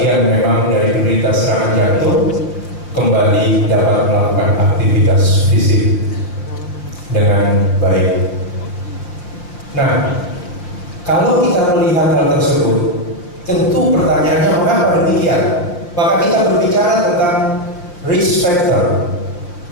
memang dari penderita serangan jantung kembali dapat melakukan aktivitas fisik dengan baik. Nah, kalau kita melihat hal tersebut, tentu pertanyaannya mengapa demikian? Maka kita berbicara tentang risk factor.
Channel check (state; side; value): late; right; 5.7 ms